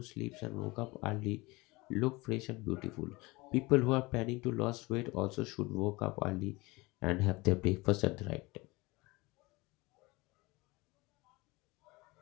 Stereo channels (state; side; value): quieter; right; 23.0 dB